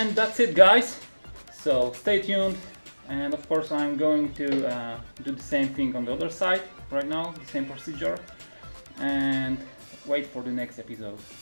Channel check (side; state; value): both; inverted; correlation -1.00